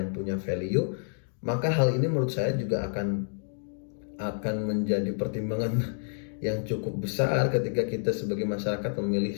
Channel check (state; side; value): silent; right; digital silence